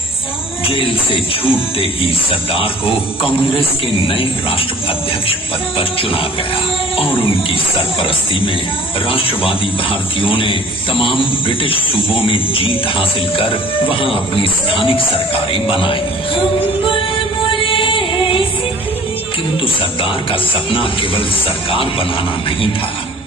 जेल से छूटते ही सरदार को कांग्रेस के नए राष्ट्राध्यक्ष पद पर चुना गया और उनकी सरपरस्ती में राष्ट्रवादी भारतीयों ने तमाम ब्रिटिश सूबों में जीत हासिल कर वहां अपनी स्थानिक सरकारें बनाई। किंतु सरदार का सपना केवल सरकार बनाना नहीं था।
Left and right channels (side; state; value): both; normal; correlation 0.49